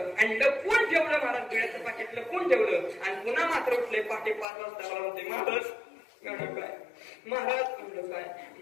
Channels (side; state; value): right; drops out; at 4.5 s